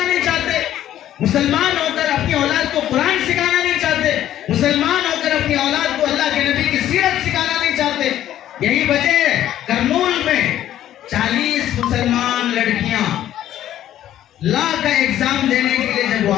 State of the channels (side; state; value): right; quieter; 12.1 dB